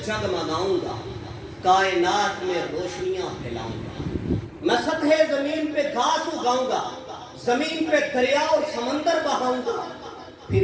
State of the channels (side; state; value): both; identical; correlation 1.00